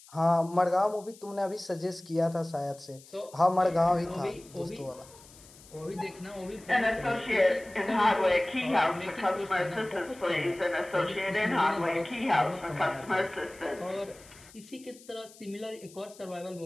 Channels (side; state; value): left; noise; hiss, 22 dB below the sound